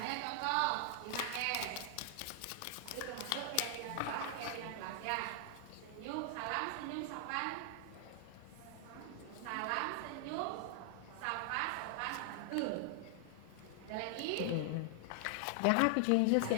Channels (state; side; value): different; both; correlation 0.00